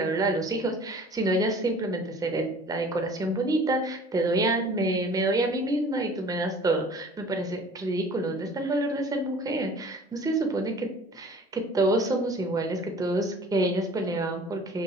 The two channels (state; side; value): normal; both; correlation 0.48